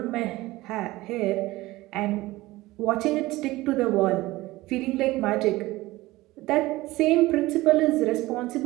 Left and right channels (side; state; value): left; quieter; 18.8 dB